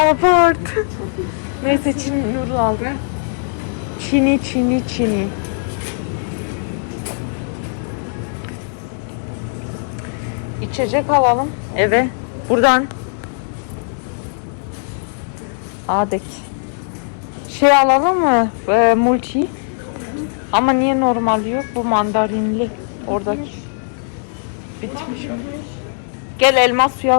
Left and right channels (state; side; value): silent; right; digital silence